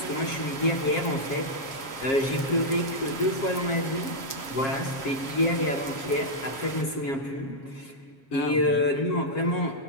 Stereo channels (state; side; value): late; right; 7.4 ms